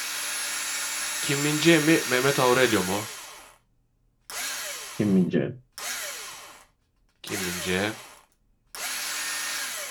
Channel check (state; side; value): identical; both; correlation 1.00